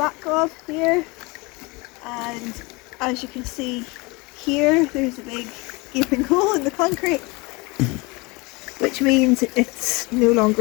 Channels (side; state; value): right; quieter; 26.2 dB